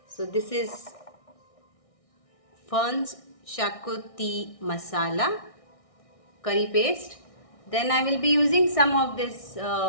So this is Funds Shakuti Masala curry paste. Then I will be using some of this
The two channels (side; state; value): right; late; 1.6 ms